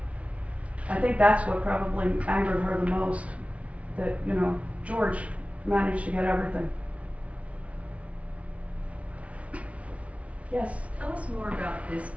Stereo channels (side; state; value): left; late; 0.064 ms